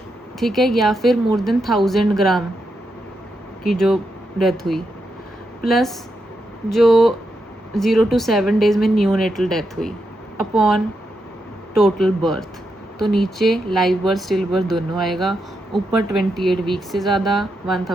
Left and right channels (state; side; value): normal; both; correlation 0.84